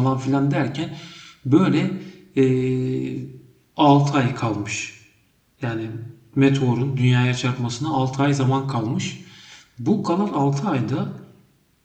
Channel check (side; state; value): both; identical; correlation 1.00